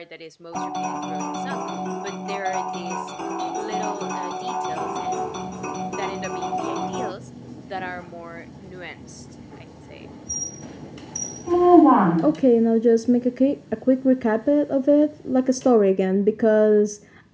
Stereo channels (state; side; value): identical; both; correlation 1.00